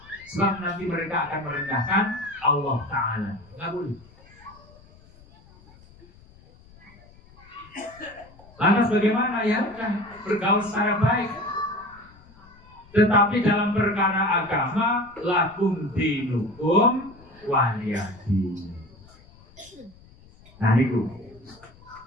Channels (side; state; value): left; noise; rumble, 25 dB below the sound